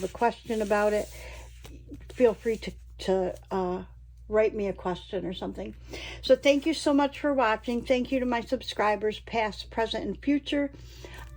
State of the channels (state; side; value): identical; both; correlation 1.00